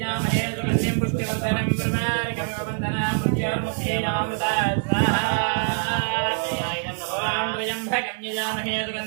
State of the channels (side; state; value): left; silent; 62 dB below the other